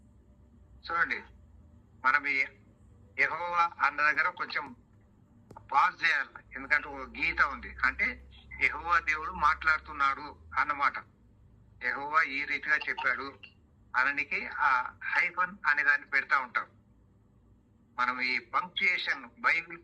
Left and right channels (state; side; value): identical; both; correlation 1.00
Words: చూడండి, మనం ఈ యెహోవా అన్న దగ్గర కొంచెం పాజ్ చేయాలి. ఎందుకంటే ఒక గీత ఉంది. అంటే యెహోవా దేవుడు మాట్లాడుతున్నాడు అన్నమాట. యెహోవా ఈ రీతిగా చెప్పాడు అననికి ఆ హైఫన్ అనే దాన్ని పెడతా ఉంటాం. మనం ఈ పంక్చుయేషన్, బైబిల్